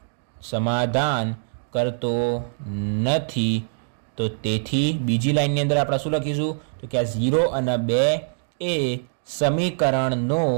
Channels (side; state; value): left; silent; digital silence